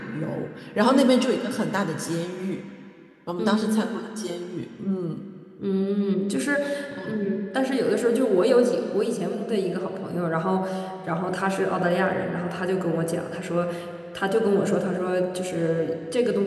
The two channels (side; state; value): both; identical; correlation 1.00